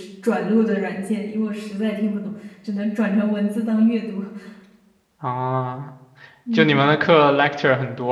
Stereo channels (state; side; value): identical; both; correlation 1.00